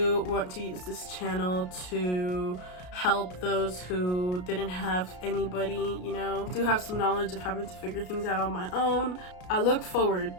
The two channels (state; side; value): late; right; 33 ms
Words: want to use this channel to help those who didn't have anybody, you know. I do have some knowledge of having to figure things out on my own. I look forward